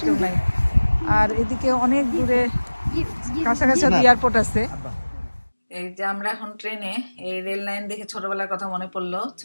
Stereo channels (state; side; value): inverted; both; correlation -1.00